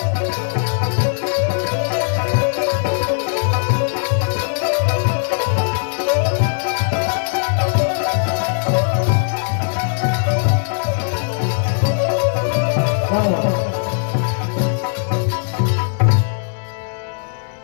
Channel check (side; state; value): right; silent; digital silence